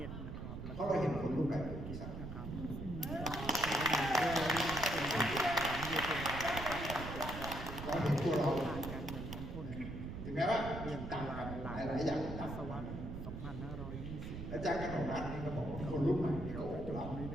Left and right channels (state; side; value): noise; right; rumble, 7 dB below the sound